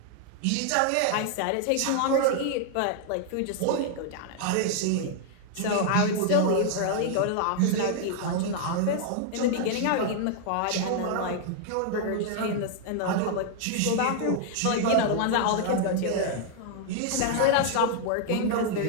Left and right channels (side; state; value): both; different; correlation -0.01